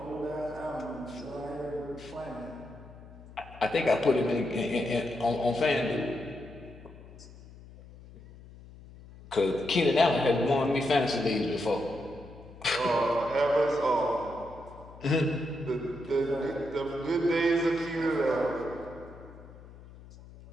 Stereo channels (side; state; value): left; noise; hum, 19 dB below the sound